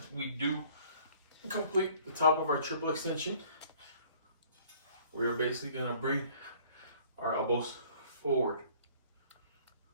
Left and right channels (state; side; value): inverted; both; correlation -0.55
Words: we do complete the top of our triple extension, we are basically gonna bring our elbows forward